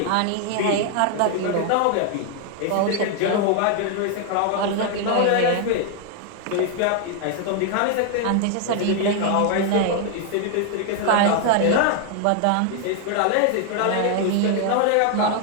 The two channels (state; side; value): different; both; correlation 0.00